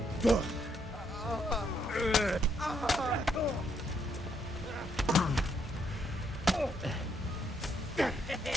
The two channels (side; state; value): both; normal; correlation 0.74